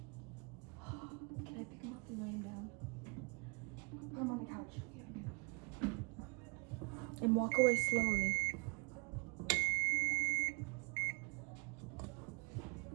Can I pick him up and lay him down? Put him on the couch. And walk away slowly.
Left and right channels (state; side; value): quieter; left; 31.3 dB